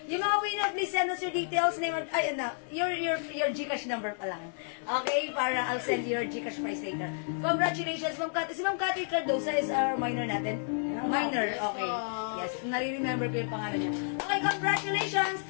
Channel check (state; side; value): silent; right; digital silence